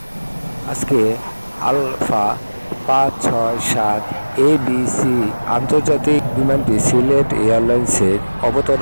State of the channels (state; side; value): inverted; both; correlation -1.00